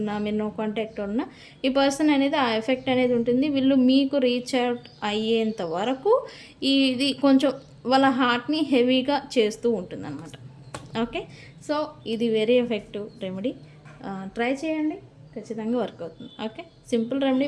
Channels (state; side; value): identical; both; correlation 1.00